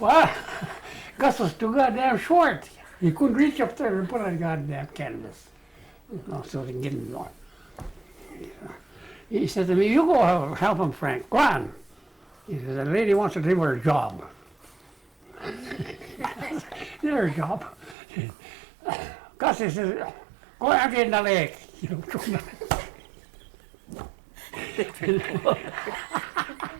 Gus was too goddamn short. He couldn't reach up there and put on a goddamn canvas. So they can get him going. He said to me, you go help him, Frank. Go on. He said, the lady wants to do her job. Her job. Gus, he says, go out in the lake.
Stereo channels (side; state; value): left; drops out; at 17.9 s